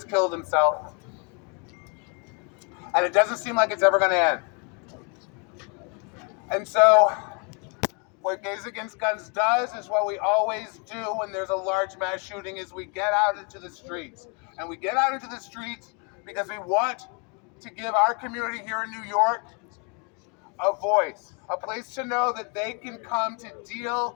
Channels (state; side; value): quieter; right; 34.1 dB